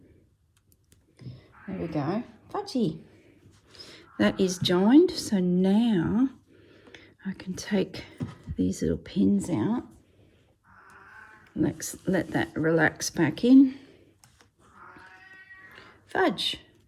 There we go. Fudgy. That is joined. So now I can take these little pins out. Let's let that relax back in. Fudge.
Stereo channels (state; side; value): identical; both; correlation 1.00